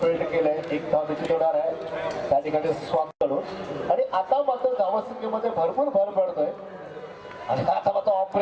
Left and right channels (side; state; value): both; identical; correlation 1.00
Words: केलंय. एक धाव निश्चित होणार आहे त्या ठिकाणी स्वागत करून. आणि आता मात्र धावसंख्येमध्ये भरपूर भर पडतोय आणि आता मात्र ऑफ